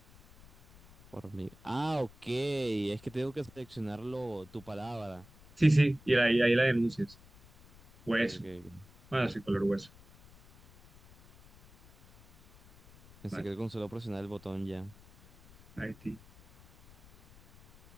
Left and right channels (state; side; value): noise; left; rumble, 24 dB below the sound